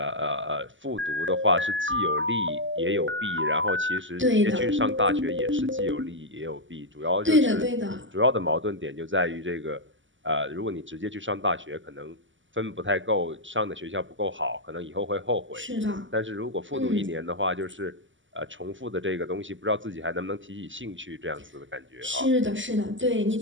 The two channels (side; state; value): left; late; 0.55 ms